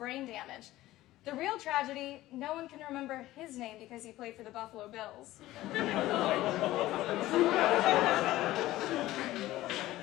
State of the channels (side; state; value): right; quieter; 16.1 dB